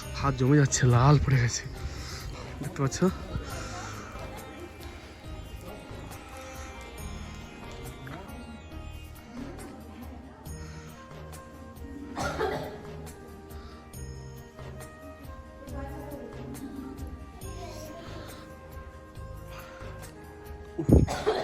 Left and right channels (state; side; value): identical; both; correlation 1.00